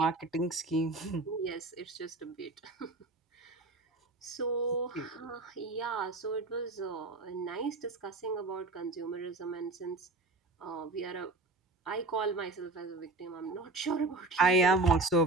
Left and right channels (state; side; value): quieter; left; 3.2 dB